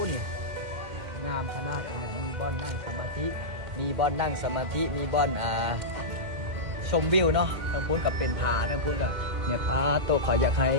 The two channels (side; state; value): left; late; 2.1 ms